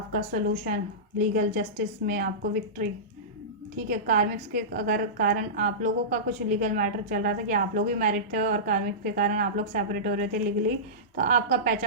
सोल्यूशन, लीगल जस्टिस में आपको विक्ट्री, ठीक है। कार्मिक्स के अगर कारण आप लोगों का कुछ लीगल मैटर चल रहा था कि आप लोग भी मैरिड थे और कार्मिक के कारण आप लोग सेपरेट हो रहे थे लीगली, तो आपका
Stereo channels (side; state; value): both; normal; correlation -0.18